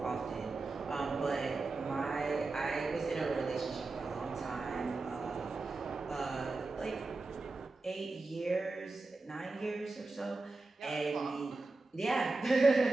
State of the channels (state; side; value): quieter; left; 3.5 dB